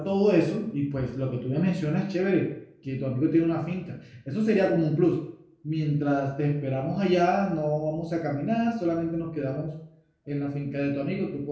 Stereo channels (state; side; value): identical; both; correlation 1.00